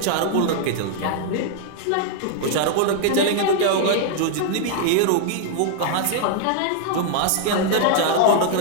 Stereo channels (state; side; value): different; both; correlation -0.01